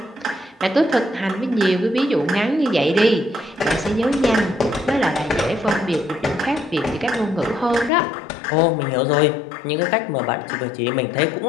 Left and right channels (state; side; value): drops out; right; at 7.9 s